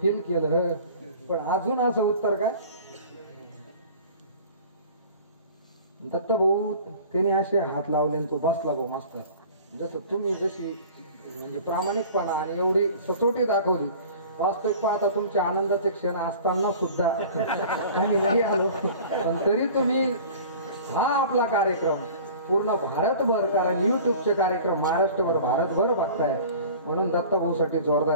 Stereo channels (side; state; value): both; inverted; correlation -0.43